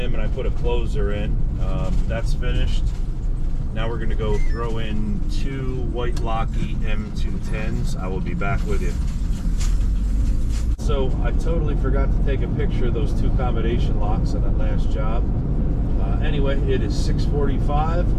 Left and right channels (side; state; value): both; identical; correlation 1.00